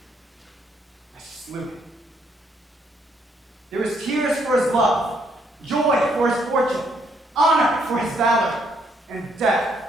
I slew him. There is tears for his love, joy for his fortune, honor for his valor, and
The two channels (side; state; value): both; normal; correlation 0.71